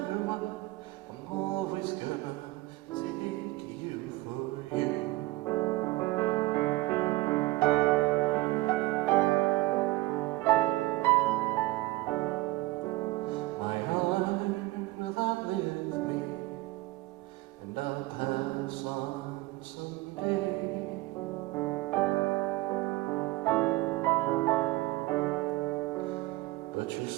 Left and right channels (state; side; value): quieter; left; 19.6 dB